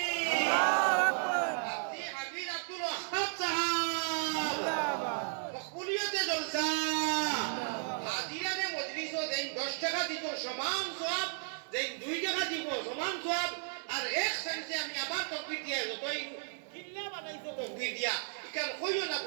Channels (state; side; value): silent; left; digital silence